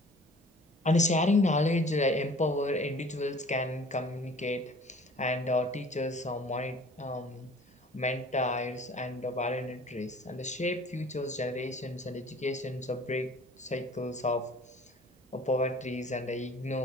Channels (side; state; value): both; normal; correlation 0.49